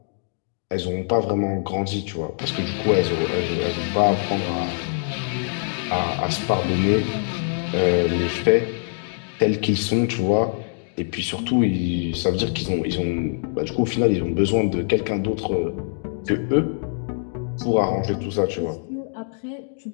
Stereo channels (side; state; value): right; silent; digital silence